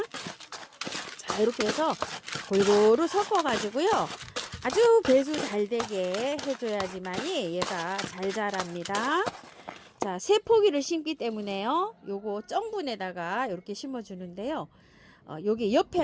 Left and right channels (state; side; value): identical; both; correlation 1.00